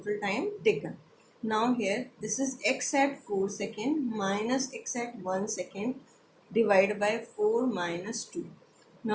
time taken. Now here this is x at 4 second minus x at 1 second divided by 4 minus 2.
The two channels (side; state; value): both; identical; correlation 1.00